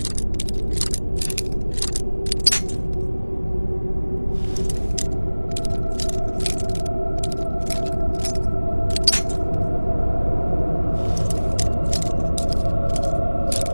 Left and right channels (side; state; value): both; inverted; correlation -1.00